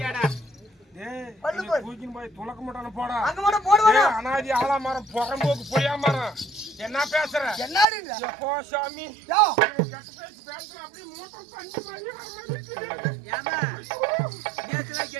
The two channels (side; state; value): left; drops out; at 7.9 s